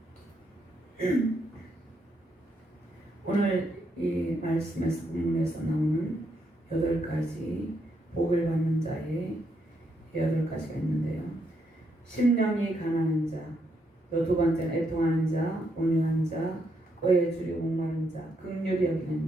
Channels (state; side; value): normal; both; correlation 0.78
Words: 오늘 이 말씀에서 본문에서 나오는 8가지 복을 받는 자의 8가지가 있는데요. 심령이 가난한 자, 또 두 번째는 애통하는 자, 온유한 자, 의에 줄이고 목마른 자, 긍휼히 여기는